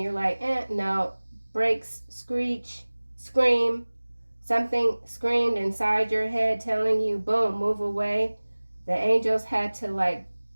you're like, no, brakes, screech, scream. Something screamed inside your head telling you, boom, move away. The angels had to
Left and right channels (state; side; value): inverted; both; correlation -1.00